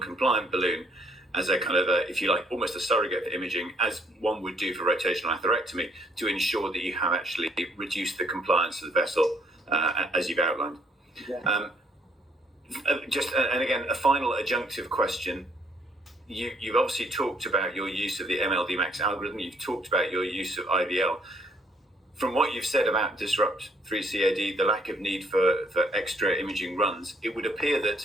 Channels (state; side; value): normal; both; correlation 0.66